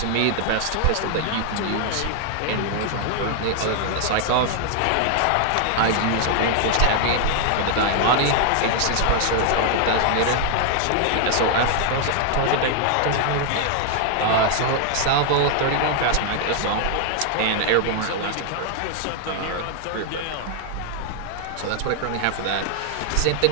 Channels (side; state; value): both; different; correlation 0.00